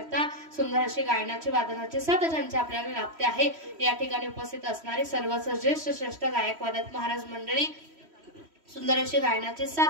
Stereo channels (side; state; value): left; late; 3.1 ms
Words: सुंदर अशी गायनाची वादनाची साथ ज्यांची आपल्याला लाभते आहे या ठिकाणी उपस्थित असणारे सर्वच ज्येष्ठ श्रेष्ठ गायक वादक महाराज मंडळी सुंदर अशी गायनाची